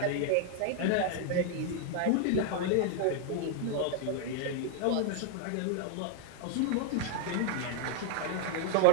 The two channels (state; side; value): different; both; correlation 0.00